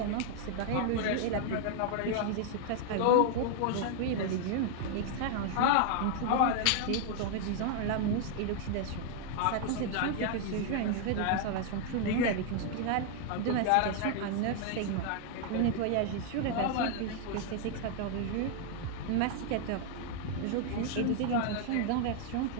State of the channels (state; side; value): different; both; correlation 0.00